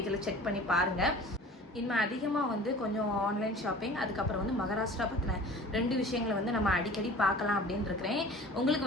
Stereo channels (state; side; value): normal; both; correlation 0.43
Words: செக் பண்ணி பாருங்கள். இனிமேல் அதிகமாக வந்து கொஞ்சம் ஆன்லைன் ஷாப்பிங், அதுக்கப்புறம் வந்து மகாராஷ்டிரா பற்றின 2 விஷயங்களை வந்து நம்ம அடிக்கடி பார்க்கலாம் அப்படின்னு இருக்கிறேன்.